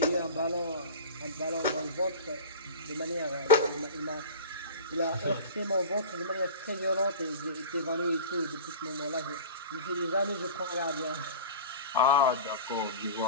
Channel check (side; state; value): both; inverted; correlation -0.34